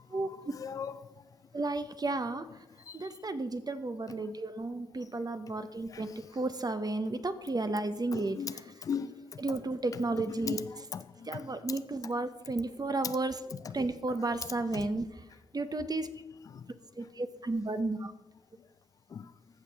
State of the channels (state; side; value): normal; both; correlation 0.76